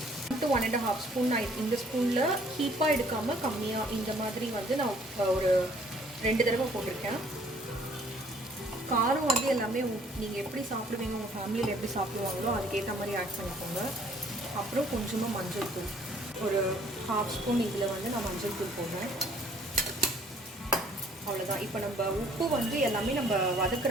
1.5 ஸ்பூன் நான் இந்த ஸ்பூனில் ஹீப்பாக எடுக்காமல் கம்மியாக இந்த மாதிரி வந்து நான் ஒரு 2 தடவை போட்டிருக்கேன். காரம் வந்து எல்லாமே நீங்கள் எப்படி சாப்பிடுவீங்க, உங்கள் ஃபேமிலியில் எப்படி சாப்பிடுவாங்களோ அதுக்கேற்ற மாதிரி ஆட் பண்ணிக்கோங்க. அப்புறம் கொஞ்சமாக மஞ்சள் தூள், ஒரு 1/2 ஸ்பூன் இதில் வந்து நான் மஞ்சள் தூள் போடுறேன். அவ்வளோதான். இப்போ நம்ம உப்பு வந்து எல்லாமே நம்ம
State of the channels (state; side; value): normal; both; correlation 0.59